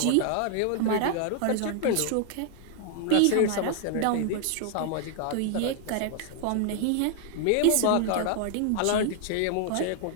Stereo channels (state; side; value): different; both; correlation 0.00